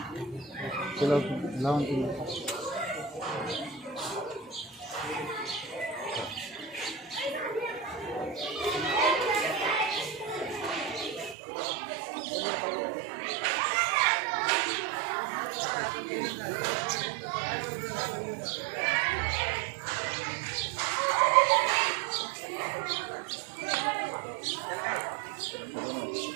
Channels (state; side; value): drops out; left; at 11.4 s